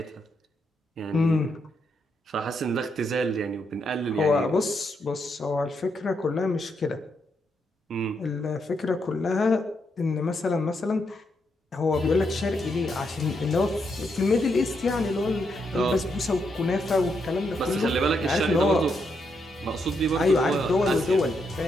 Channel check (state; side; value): normal; both; correlation 0.80